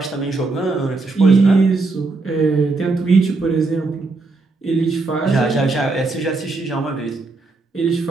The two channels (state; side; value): quieter; left; 3.6 dB